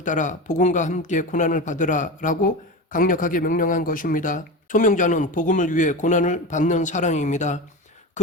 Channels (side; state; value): both; normal; correlation 0.24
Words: 따라 복음과 함께 고난을 받으라 라고 강력하게 명령한 것입니다. 소명자는 복음을 위해 고난을 받는 사람입니다.